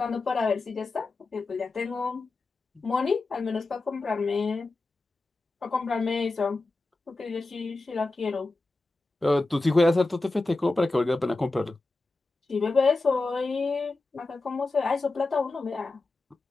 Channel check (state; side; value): quieter; right; 3.3 dB